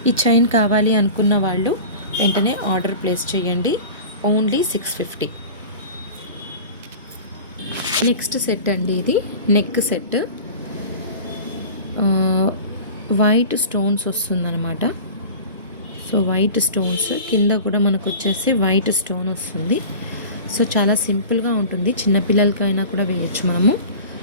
ఈ చైన్ కావాలి అనుకున్న వాళ్ళు వెంటనే ఆర్డర్ ప్లేస్ చేయండి, ఓన్లీ 650. నెక్స్ట్ సెట్ అండి, ఇది నెక్ సెట్. వైట్ స్టోన్స్ వస్తుందన్నమాట. సో వైట్ స్టోన్స్ కింద కూడా మనకు వచ్చేసి వైట్ స్టోన్ వస్తుంది. సో చాలా సింపుల్గా ఉంటుంది, చిన్నపిల్లలకైనా కూడా వేయచ్చు మనము.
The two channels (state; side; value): inverted; both; correlation -0.37